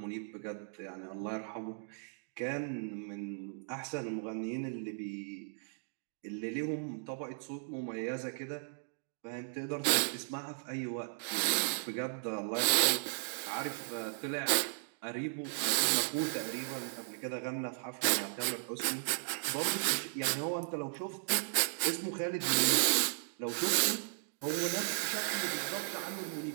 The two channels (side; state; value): left; silent; digital silence